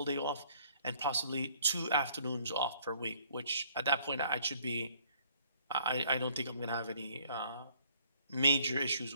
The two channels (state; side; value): inverted; both; correlation -0.61